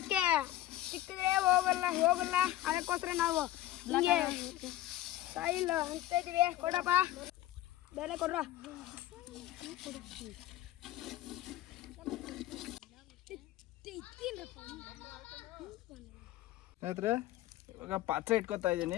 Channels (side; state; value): right; quieter; 14.4 dB